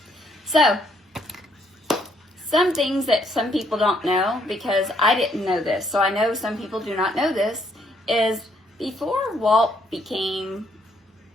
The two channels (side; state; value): both; normal; correlation 0.70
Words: So, some things that some people don't know, because I didn't know this, so I know some people do not know this, is before Walt became